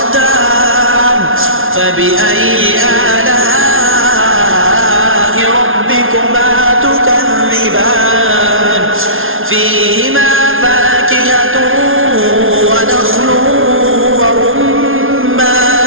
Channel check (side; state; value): left; late; 0.60 ms